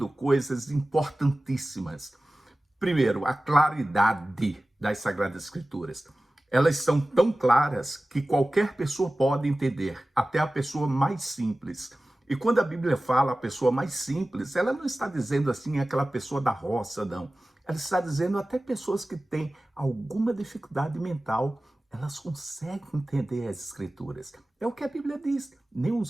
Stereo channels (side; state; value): both; normal; correlation 0.96